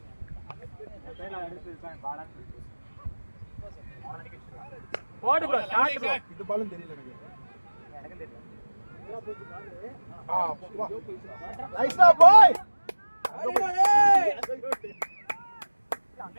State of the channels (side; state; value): both; inverted; correlation -1.00